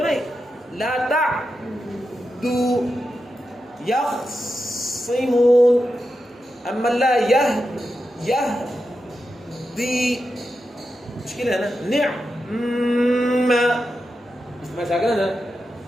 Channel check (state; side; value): normal; both; correlation 0.89